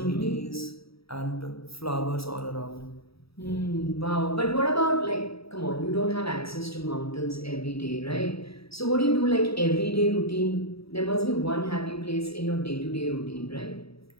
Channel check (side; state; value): right; late; 0.77 ms